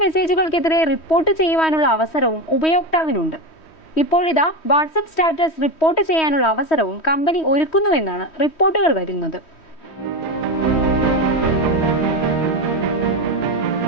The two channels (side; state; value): right; late; 3.1 ms